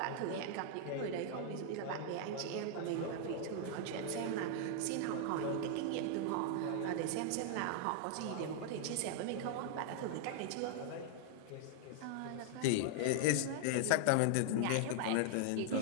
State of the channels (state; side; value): different; both; correlation 0.00